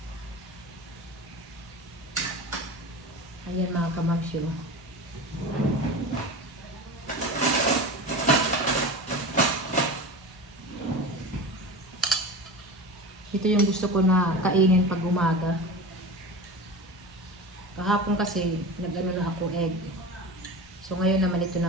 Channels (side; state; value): both; normal; correlation 0.30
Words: Ayan mga kamamsyo. Ito yung gusto ko na kainin pag umaga. Kahapon kasi nag-ano na ako egg. So ngayon naman ito